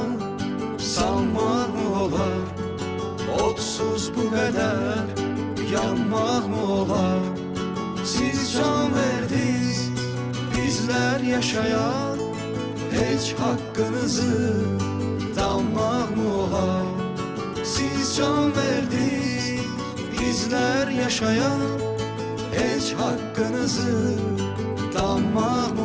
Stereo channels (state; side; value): identical; both; correlation 1.00